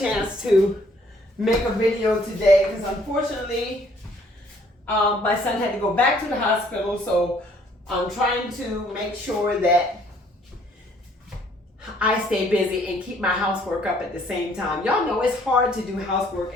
to make a video today because unfortunately my son had to go back to the hospital, so I'm trying to make sure that I stay busy and keep my housework up at the same time. Y'all know it's hard to do housework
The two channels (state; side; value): normal; both; correlation 0.62